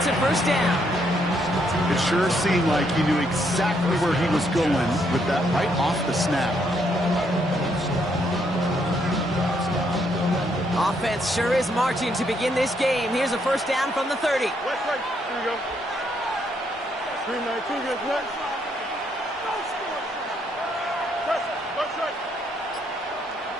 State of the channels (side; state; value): both; normal; correlation 0.73